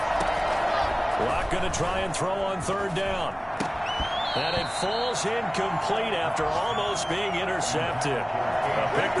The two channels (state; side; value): identical; both; correlation 1.00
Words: Locke going to try and throw on 3rd down. And it falls incomplete after almost being intercepted. A pick